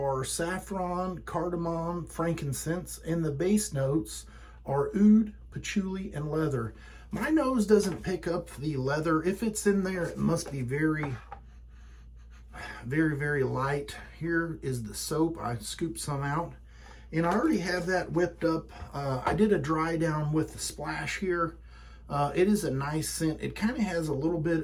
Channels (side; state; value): both; identical; correlation 1.00